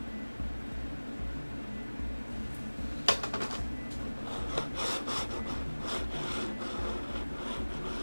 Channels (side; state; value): both; inverted; correlation -1.00